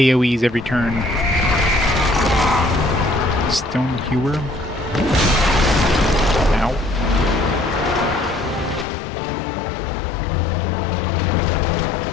every turn. Stone Hewer. Ow.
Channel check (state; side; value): drops out; right; at 8.8 s